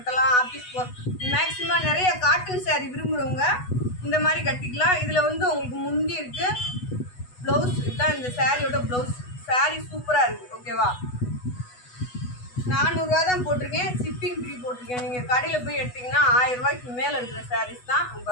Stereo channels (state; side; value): late; right; 8.1 ms